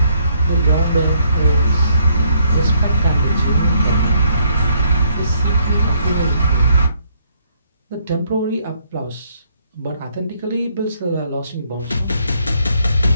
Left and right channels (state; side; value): inverted; both; correlation -0.69